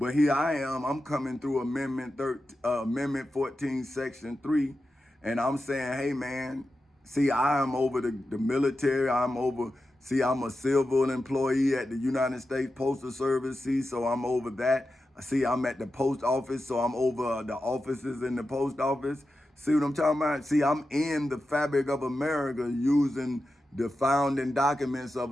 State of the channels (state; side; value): normal; both; correlation 0.91